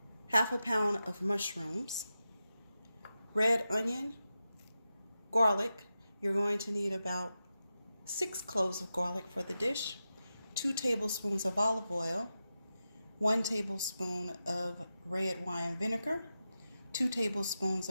half a pound of mushrooms, red onion, garlic. You're going to need about 6 cloves of garlic for the dish, 2 tablespoons of olive oil, 1 tablespoon of red wine vinegar, 2 tablespoons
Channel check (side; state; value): both; inverted; correlation -0.91